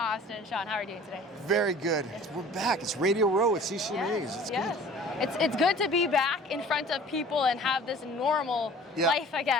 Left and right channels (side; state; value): both; normal; correlation 0.47